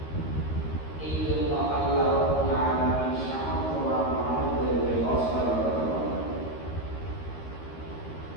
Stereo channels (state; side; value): late; right; 13 ms